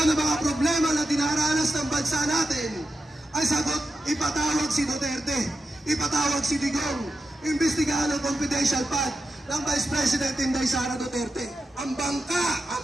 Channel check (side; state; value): both; normal; correlation 0.89